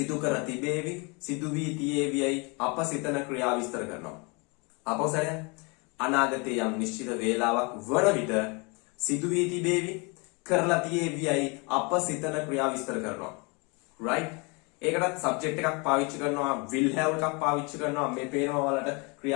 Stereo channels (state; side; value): quieter; right; 30.5 dB